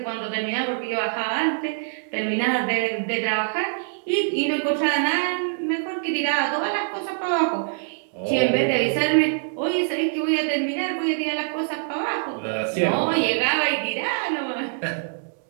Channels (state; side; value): silent; left; digital silence